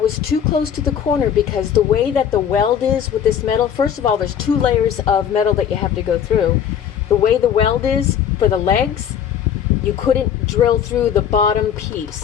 too close to the corner because the way that the weld is with this metal, first of all, there's 2 layers of metal that you have to go through. The way the weld is for the legs, you couldn't drill through the bottom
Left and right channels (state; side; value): quieter; right; 8.7 dB